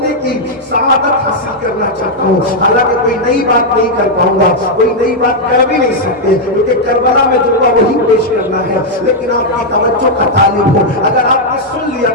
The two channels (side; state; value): both; normal; correlation -0.02